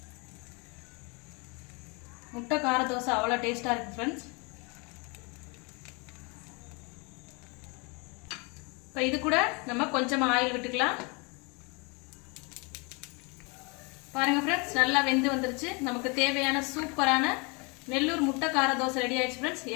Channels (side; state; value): right; quieter; 30.8 dB